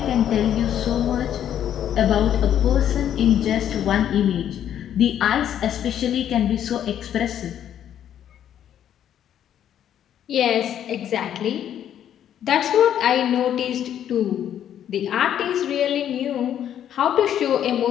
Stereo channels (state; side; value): quieter; right; 10.2 dB